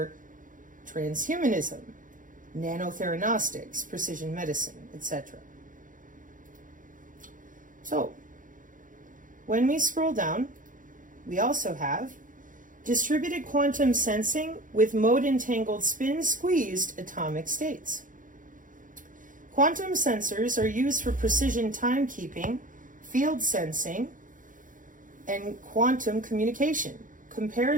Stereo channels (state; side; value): late; left; 0.38 ms